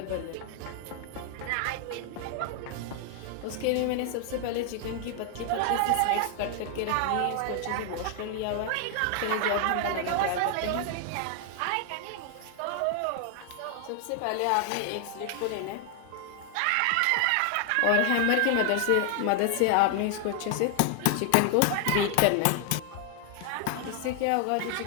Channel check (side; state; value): both; different; correlation 0.00